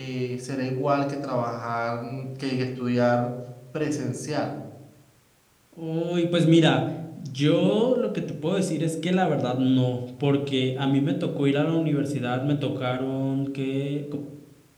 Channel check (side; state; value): both; identical; correlation 1.00